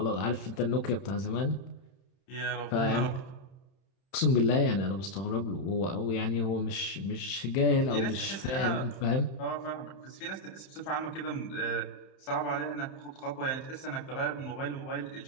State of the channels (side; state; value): right; late; 31 ms